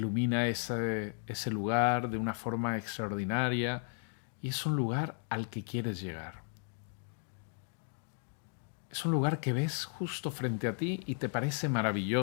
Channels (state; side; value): silent; right; 55 dB below the other